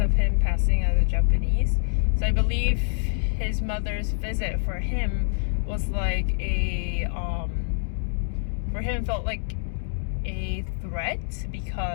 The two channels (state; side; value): silent; right; digital silence